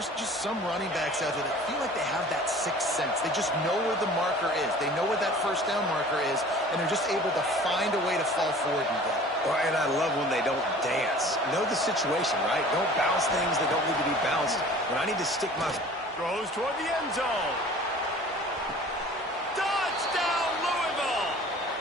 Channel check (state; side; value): normal; both; correlation 0.46